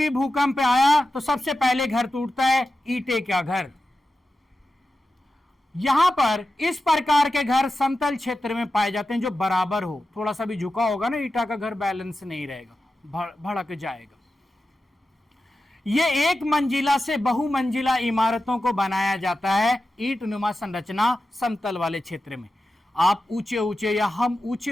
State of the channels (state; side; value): normal; both; correlation 0.92